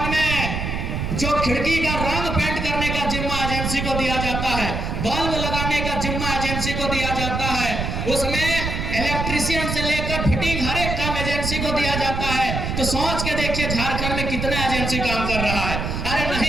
में जो खिड़की का रंग पेंट करने का जिम्मा एजेंसी को दिया जाता है, बल्ब लगाने का जिम्मा एजेंसी को दिया जाता है, उसमें इलेक्ट्रिशियन से लेकर फिटिंग हर एक काम एजेंसी को दिया जाता है। तो सोच के देखिए झारखंड में कितना एजेंसी काम कर रहा है। अरे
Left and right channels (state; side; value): noise; right; rumble, 3 dB below the sound